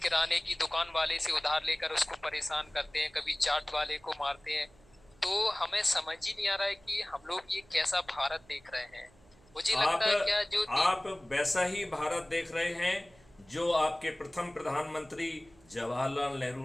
की दुकान वाले से उधार लेकर उसको परेशान करते हैं, कभी चाट वाले को मारते हैं। तो हमें समझ ही नहीं आ रहा है कि हम लोग ये कैसा भारत देख रहे हैं। मुझे आप लगता है क्या जो आप वैसा ही भारत देख रहे हैं जो आपके प्रथम प्रधानमंत्री जवाहरलाल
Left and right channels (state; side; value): noise; right; hum, 28 dB below the sound